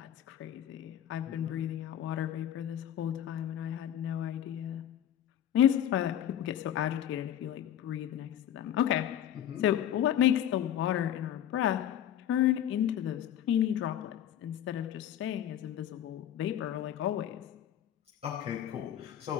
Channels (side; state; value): right; quieter; 10.8 dB